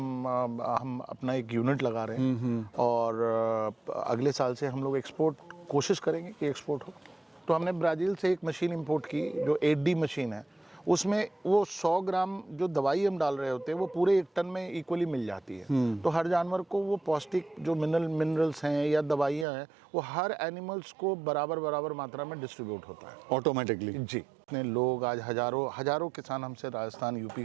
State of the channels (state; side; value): drops out; left; at 19.5 s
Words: अपना एक यूनिट लगा रहे हैं और अगले साल से हम लोग एक्सपोर्ट कोशिश करेंगे कि एक्सपोर्ट हो। तो हमने ब्राज़ील से एक मशीन इंपोर्ट की जो 8D मशीन है, उसमें वो 100 ग्राम जो दवाई हम डाल रहे होते हैं वो पूरे 1 टन में इक्वली मिल जाती है। तो हर जानवर को वो पौष्टिक जो मिनरल्स हैं या दवाइयाँ हैं वो हर एनिमल्स को बराबर मात्रा में डिस्ट्रीब्यूट होता है ऑटोमेटिकली। जी, इतने लोग आज हजारों किसान हमसे राजस्थान यूपी